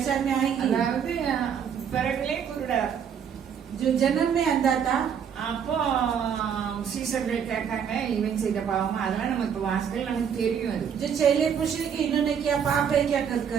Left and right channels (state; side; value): quieter; left; 7.7 dB